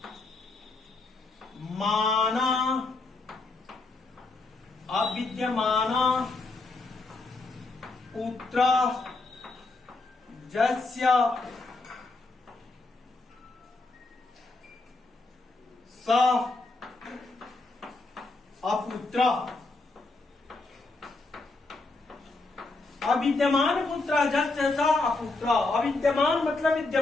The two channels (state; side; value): quieter; right; 3.4 dB